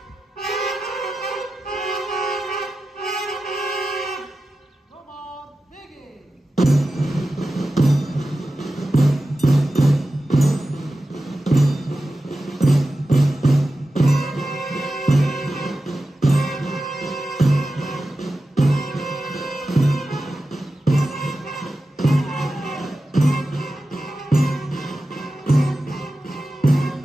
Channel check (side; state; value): both; normal; correlation 0.93